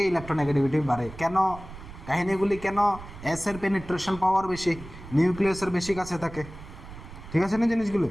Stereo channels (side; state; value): right; noise; rumble, 15 dB below the sound